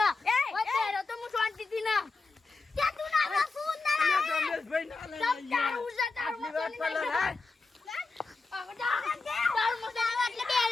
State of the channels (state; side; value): quieter; right; 3.9 dB